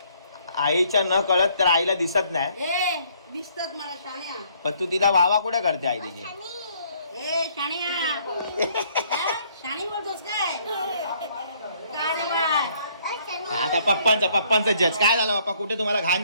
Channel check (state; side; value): inverted; both; correlation -0.64